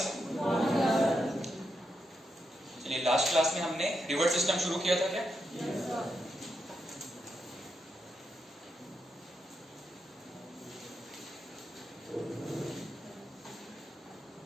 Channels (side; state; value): both; normal; correlation 0.84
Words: चलिए last class में हमने रिवर सिस्टम शुरू किया था क्या?